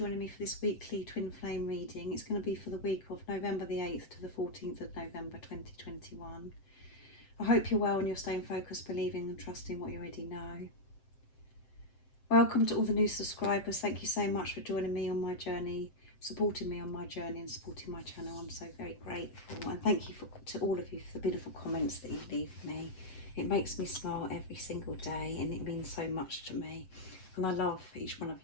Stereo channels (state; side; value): late; right; 7.8 ms